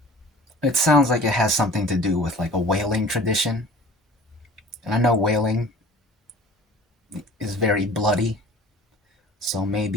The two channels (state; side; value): normal; both; correlation 0.44